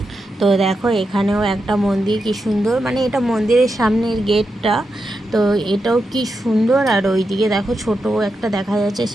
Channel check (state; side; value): normal; both; correlation 0.87